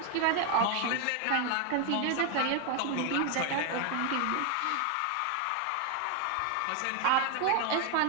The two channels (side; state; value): both; different; correlation 0.00